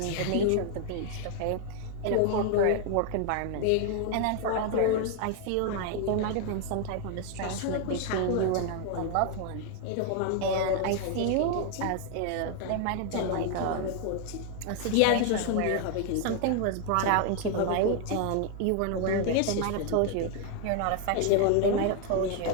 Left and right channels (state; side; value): different; both; correlation 0.00